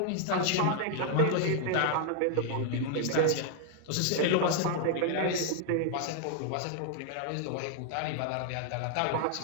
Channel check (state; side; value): different; both; correlation 0.00